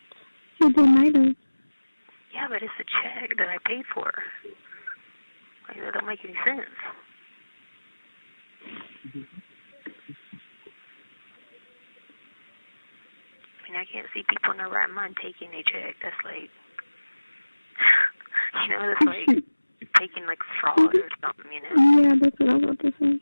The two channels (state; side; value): inverted; both; correlation -1.00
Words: You might have. Yeah, but it's a check that I paid for. Like, that don't make any sense. I mean, I can't see people in their right mind taking a check. That's like, you know, that's like taking like fraud or something, you know? Yeah, that's what I was about to say.